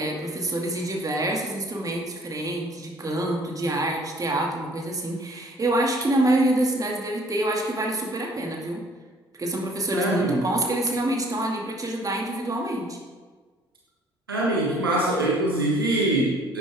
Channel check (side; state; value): both; normal; correlation 0.56